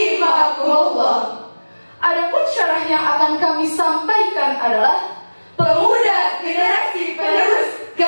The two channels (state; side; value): inverted; both; correlation -1.00